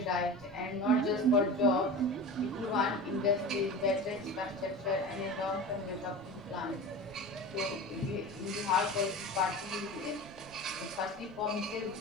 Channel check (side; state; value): right; noise; rumble, 24 dB below the sound